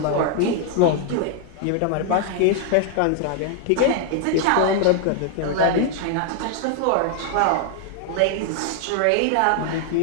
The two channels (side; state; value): both; different; correlation 0.00